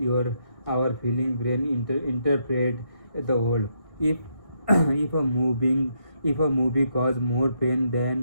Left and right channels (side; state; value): left; late; 1.6 ms